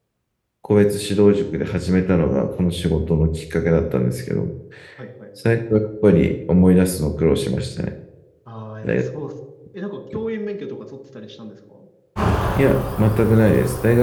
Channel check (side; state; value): both; identical; correlation 1.00